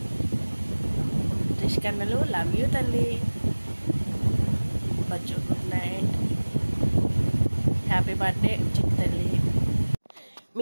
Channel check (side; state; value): both; inverted; correlation -1.00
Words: రిషి కన్నలు లవ్ యూ తల్లి. బచ్చు గుడ్ నైట్. హ్యాపీ బర్త్డే చిట్టి తల్లి.